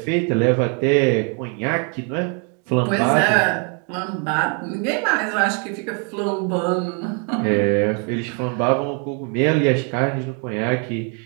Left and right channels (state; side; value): quieter; left; 38.7 dB